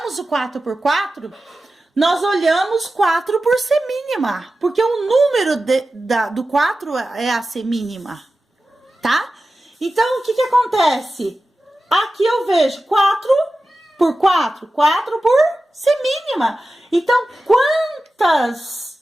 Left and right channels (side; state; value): both; normal; correlation 0.94